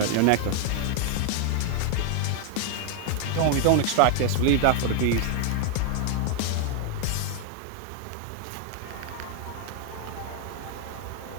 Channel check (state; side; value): different; both; correlation 0.00